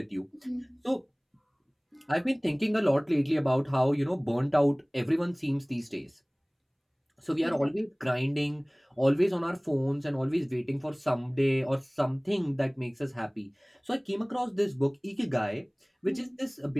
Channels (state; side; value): identical; both; correlation 1.00